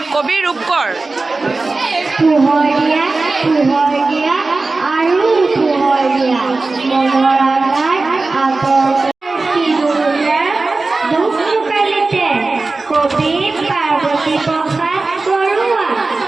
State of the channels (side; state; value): left; quieter; 3.6 dB